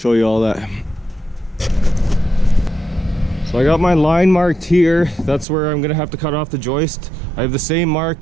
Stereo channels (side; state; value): left; drops out; at 5.5 s